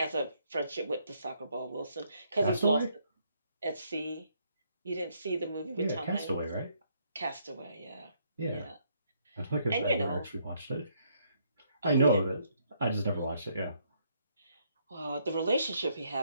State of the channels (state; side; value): inverted; both; correlation -0.71